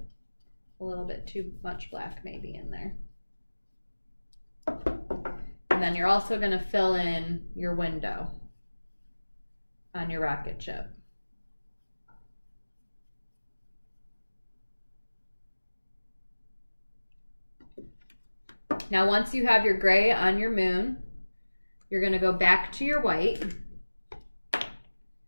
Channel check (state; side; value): inverted; both; correlation -1.00